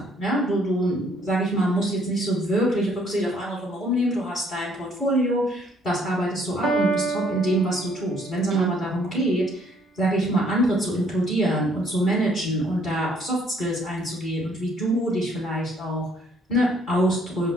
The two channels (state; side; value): normal; both; correlation 0.64